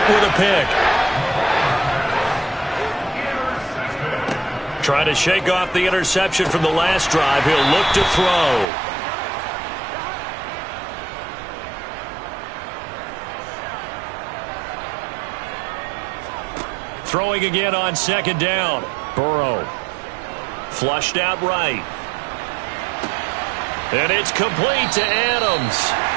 with a pick. Trying to shake off the interception from the last drive. He'll look to throw. Throwing again on 2nd down. Burrow. Flushed out right. And it's complete to Adams.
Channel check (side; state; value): left; drops out; at 8.7 s